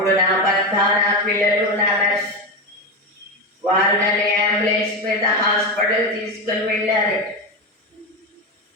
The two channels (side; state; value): both; normal; correlation 0.15